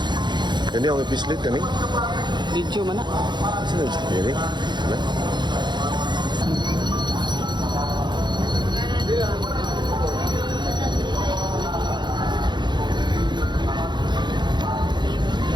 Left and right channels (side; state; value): left; late; 0.21 ms